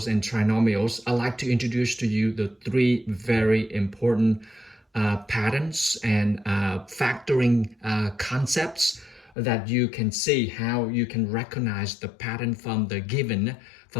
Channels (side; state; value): right; drops out; at 9.3 s